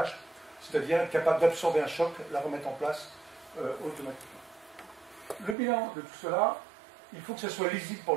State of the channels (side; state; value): left; drops out; at 5.6 s